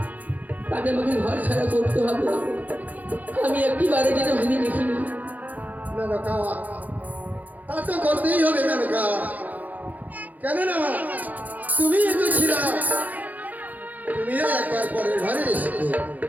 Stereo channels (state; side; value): late; left; 0.080 ms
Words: তাকে আমাকে ঘর ছাড়া করতে হবে, আমি একটিবারে যেন ভেবে দেখিনি। মেনকা, তা তো করতেই হবে মেনকা, কেননা তুমি তো ছিলা, তুমিও একবার পরের ঘরে এসেছো,